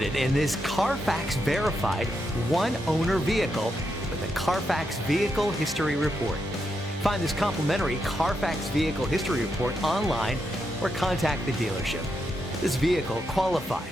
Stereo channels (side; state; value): both; normal; correlation 0.83